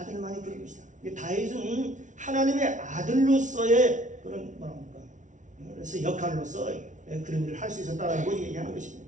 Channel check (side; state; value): left; late; 0.37 ms